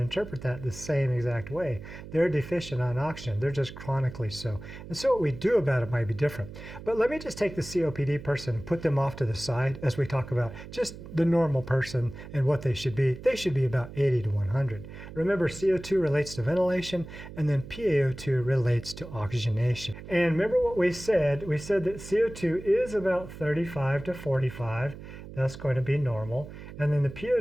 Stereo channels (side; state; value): right; noise; hum, 13 dB below the sound